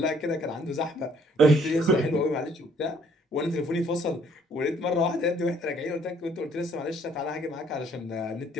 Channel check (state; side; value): normal; both; correlation 0.62